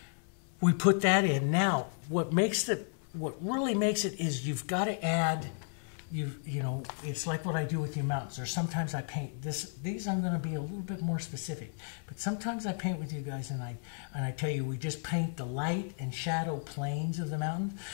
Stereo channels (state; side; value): silent; right; 56 dB below the other